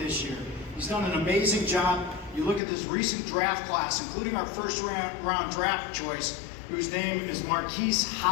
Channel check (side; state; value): right; drops out; at 2.6 s